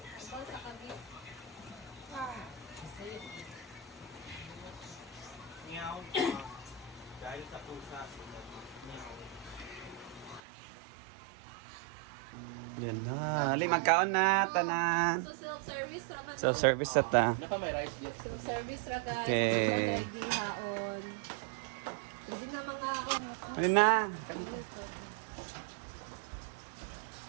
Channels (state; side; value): drops out; left; at 10.4 s